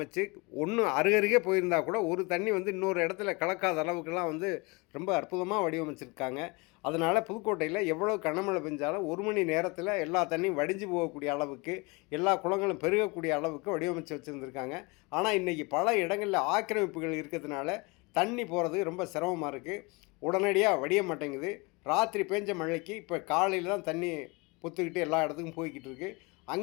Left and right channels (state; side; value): quieter; right; 27.3 dB